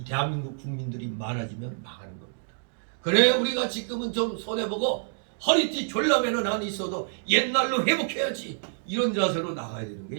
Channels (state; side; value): silent; left; digital silence